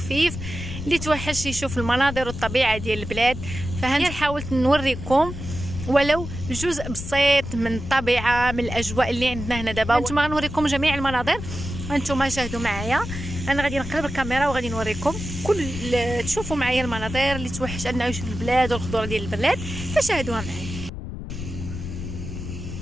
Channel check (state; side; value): noise; left; rumble, 8 dB below the sound